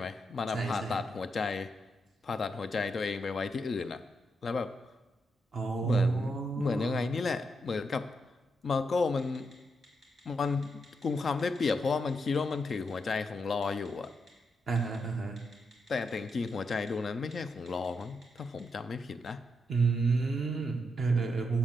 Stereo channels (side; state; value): both; normal; correlation 0.82